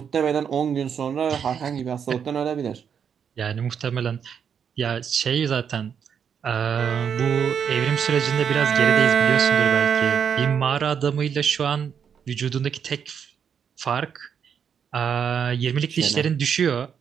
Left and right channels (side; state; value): left; quieter; 7.5 dB